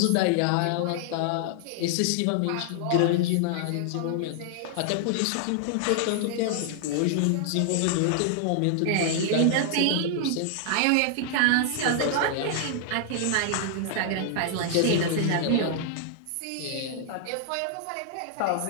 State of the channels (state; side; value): different; both; correlation 0.00